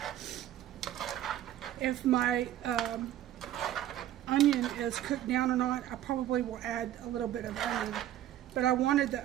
if my onion is cooked down or not, I probably will add a little bit of onion, but I wanted the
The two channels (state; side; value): quieter; left; 12.5 dB